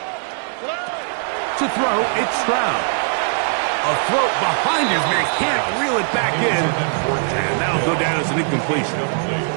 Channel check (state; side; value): silent; left; 63 dB below the other